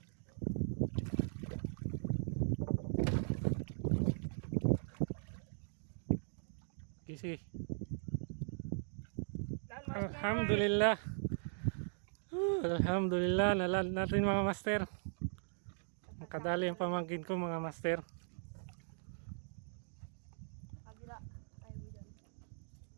Kisi. Alhamdulillah. Alhamdulillah, nalan natin mga master. Makadali ang pamangkin ko mga master. Kabila. Ayaw mo dyan.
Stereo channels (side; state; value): left; silent; digital silence